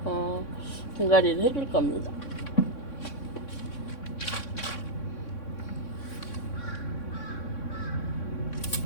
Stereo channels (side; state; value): right; late; 3.6 ms